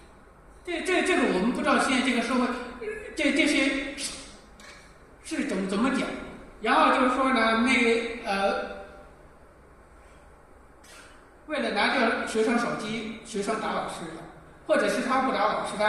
这个我们不知道现在这个社会，这些是怎么讲？然后就是说呢，为了拿掉学生手机，学生打老师的，或者是他不打老师，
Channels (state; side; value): identical; both; correlation 1.00